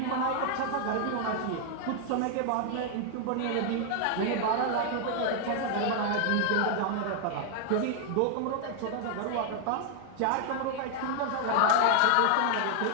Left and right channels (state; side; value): different; both; correlation 0.00